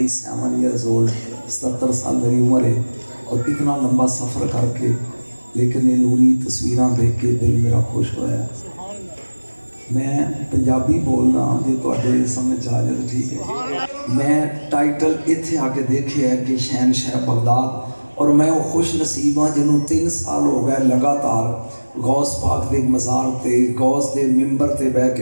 ایئرز اولڈ، 77 سال میری عمر ہے، اور اتنا لمبا سفر کر کے لیکن یہ نوری تصویراں دیکھ کے دل میرا خوش ہویا۔ میں پنجابی بولنا جی تواڈے سمجھ آ جائے تو ٹھیک ہے۔ میں ٹائٹل اتھے آ کے دیکھے ہے کہ شہنشاہ بغداد، اور میں وہ خوش نصیب ہاں جنہوں 3 سال ہو گئے لگاتار غوث پاک دے مزار تے غوث دے ممبر تے بہ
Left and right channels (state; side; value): inverted; both; correlation -1.00